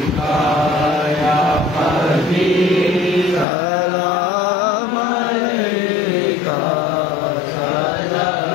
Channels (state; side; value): drops out; right; at 3.5 s